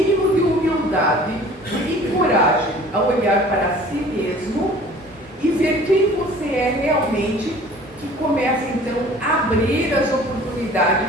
de humildade e coragem a olhar para si mesmo e ver quem você é realmente, que começa então a abrir as oportunidades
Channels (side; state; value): both; normal; correlation 0.48